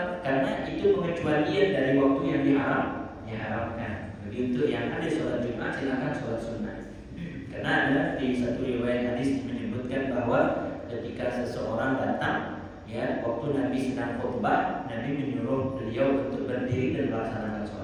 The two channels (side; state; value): both; identical; correlation 1.00